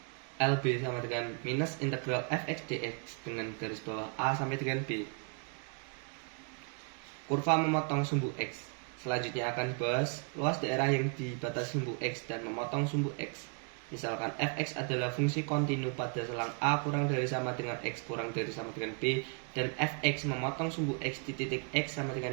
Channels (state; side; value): quieter; left; 39.2 dB